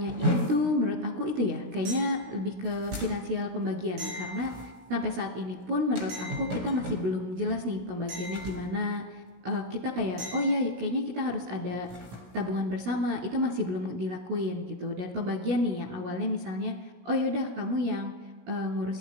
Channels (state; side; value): late; left; 16 ms